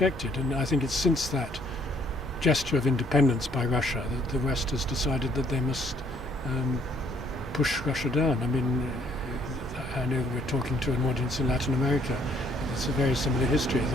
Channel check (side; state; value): both; normal; correlation 0.65